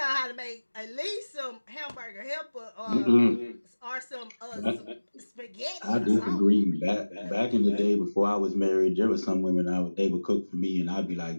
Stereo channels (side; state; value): both; inverted; correlation -1.00